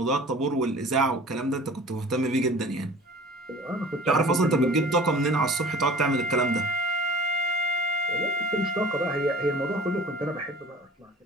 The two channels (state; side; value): normal; both; correlation 0.44